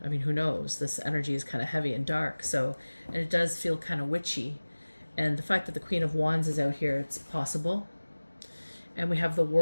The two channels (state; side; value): inverted; both; correlation -1.00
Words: I mean, who knows? This energy is kind of heavy and dark. So, and it does feel kind of witchy. And the fact that the Queen of Wands is out here, it's possible. And we have the